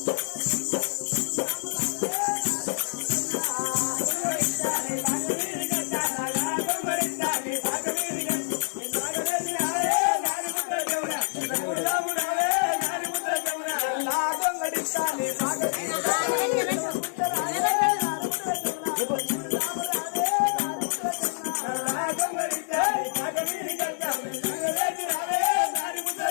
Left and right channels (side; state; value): right; silent; digital silence